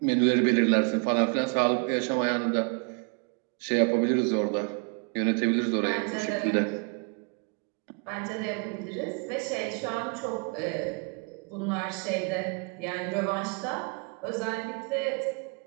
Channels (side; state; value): left; quieter; 33.8 dB